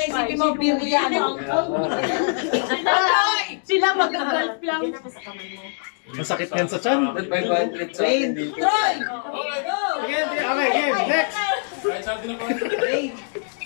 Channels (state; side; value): silent; right; digital silence